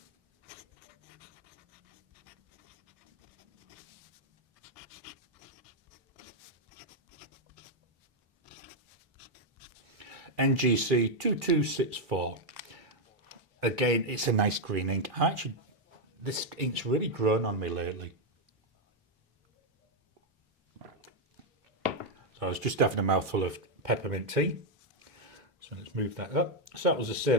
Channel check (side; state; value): both; normal; correlation 0.01